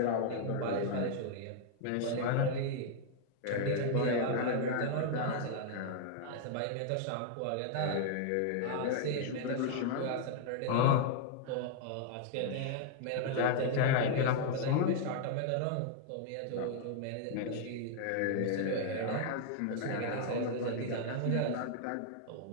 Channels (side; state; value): both; different; correlation -0.01